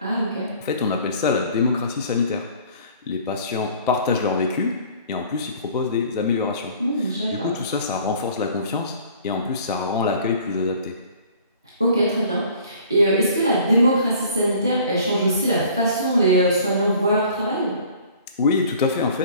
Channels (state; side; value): inverted; both; correlation -0.51